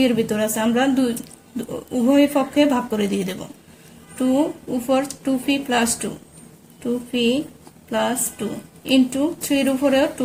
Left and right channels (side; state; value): both; identical; correlation 1.00